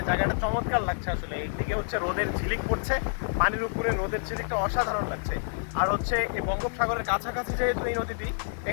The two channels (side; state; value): right; silent; 59 dB below the other